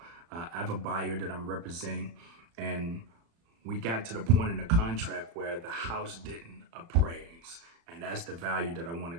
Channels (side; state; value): left; late; 35 ms